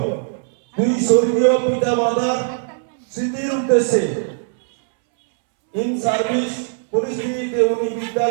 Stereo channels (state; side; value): silent; left; 66 dB below the other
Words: দুই স্বর্গীয় পিতা মাতার স্মৃতির উদ্দেশ্যে ইন সার্ভিস পরিস্থিতিতে উনি